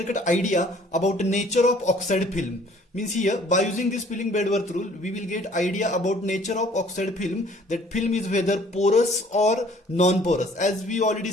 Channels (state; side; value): normal; both; correlation 0.56